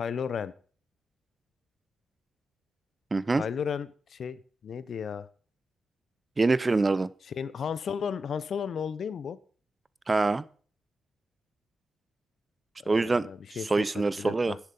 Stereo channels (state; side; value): normal; both; correlation 0.90